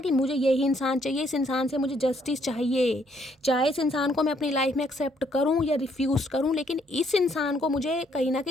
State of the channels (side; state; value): both; normal; correlation 0.69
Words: मुझे यही इंसान चाहिए, इस इंसान से मुझे जस्टिस चाहिए, चाहे इस इंसान को मैं अपनी लाइफ में एक्सेप्ट करूँ या रिफ्यूज़ करूँ, लेकिन इस इंसान को मुझे कहीं ना